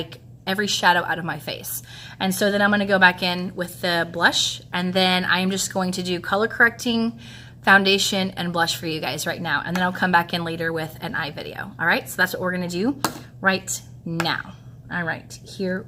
every shadow out of my face. And so then I'm going to go back in with the blush, and then I'm just going to do color correcting, foundation, and blush for you guys right now. And then I'll come back in later with an eye video. All right, so that's what we're going to do right now. All right, here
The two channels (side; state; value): both; identical; correlation 1.00